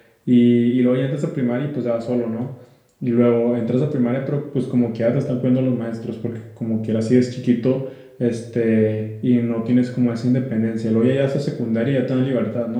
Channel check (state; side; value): identical; both; correlation 1.00